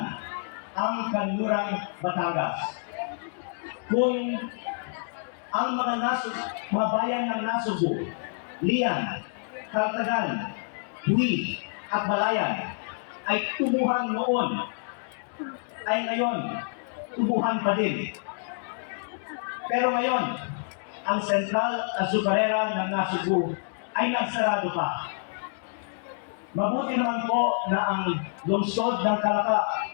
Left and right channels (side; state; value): right; silent; 60 dB below the other